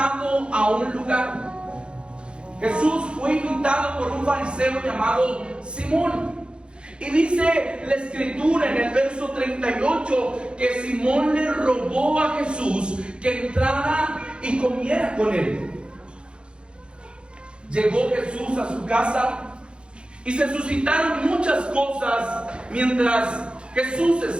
a un lugar. Jesús fue invitado por un fariseo llamado Simón. Y dice la escritura en el verso 38 que Simón le rogó a Jesús que entrara y comiera con él. Llegó Jesús a su casa y se suscitaron muchas cosas mientras Jesús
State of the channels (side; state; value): left; late; 0.055 ms